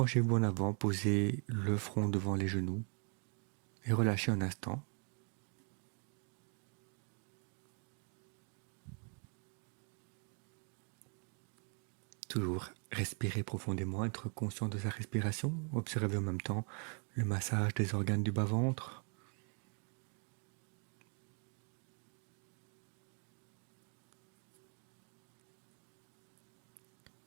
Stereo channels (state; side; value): quieter; left; 39.3 dB